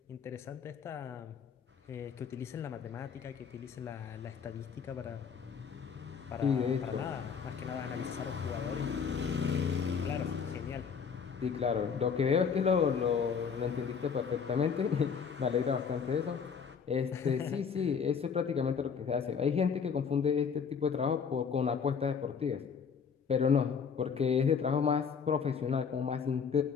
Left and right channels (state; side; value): quieter; right; 6.4 dB